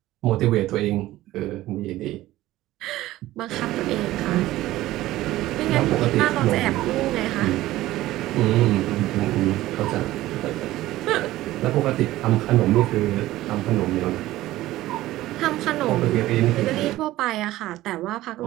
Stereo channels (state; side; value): quieter; left; 16.0 dB